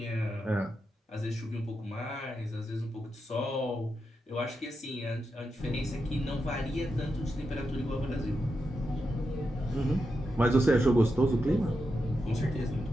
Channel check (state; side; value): normal; both; correlation 0.87